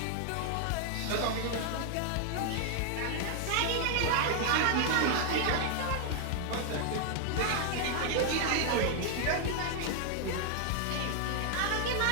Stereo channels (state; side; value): different; both; correlation 0.00